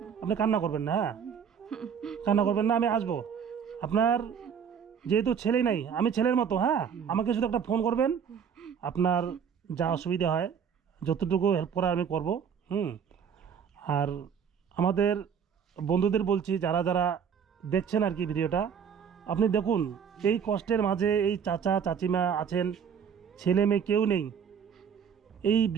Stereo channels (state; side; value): quieter; left; 7.4 dB